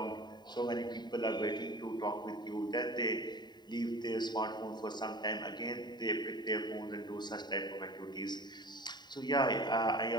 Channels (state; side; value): late; right; 0.21 ms